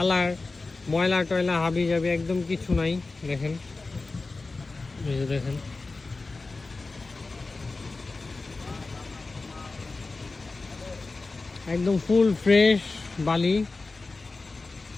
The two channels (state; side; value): quieter; right; 3.6 dB